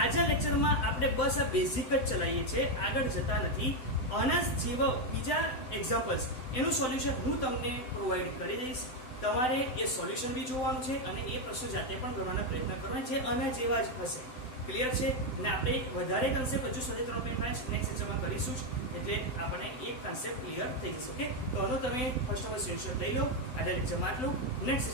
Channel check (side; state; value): right; late; 7.8 ms